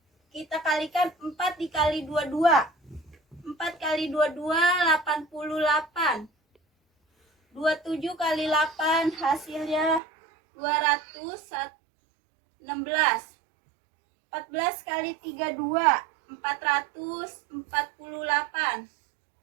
kita kalikan 4 dikali 22. 4 kali 22, 88. 27 kali 8, hasilnya 216. 14 kali 32, 448.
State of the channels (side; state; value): left; drops out; at 10.0 s